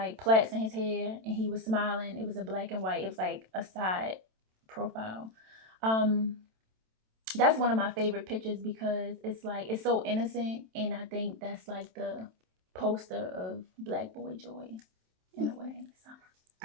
plaits in his hair and he was smiling. It was a black and white, it was like a side profile. Um, that's one of my favorite pictures because it's like it's so innocent, and I think that's like the poster of Black boy joy in a way. So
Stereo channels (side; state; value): left; late; 27 ms